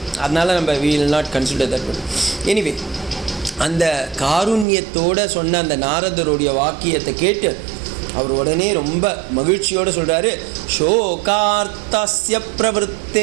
அதனால் நம்ம we will not consider that one. Anyway அந்த காருண்யத்தோடு சொன்ன அந்த நாரதருடைய வாக்கியத்தை கேட்டு அவர் உடனே ரொம்ப மகிழ்ச்சியோடு சொல்கிறாரு. ஷோகார்த்தஸ்ய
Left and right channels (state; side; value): drops out; left; at 4.7 s